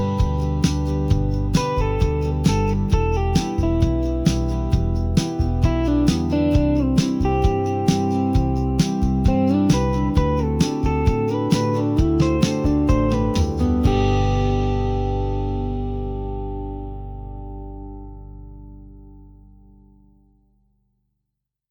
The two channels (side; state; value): both; identical; correlation 1.00